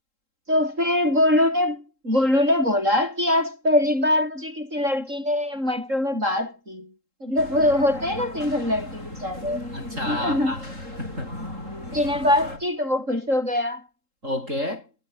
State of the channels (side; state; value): left; late; 3.8 ms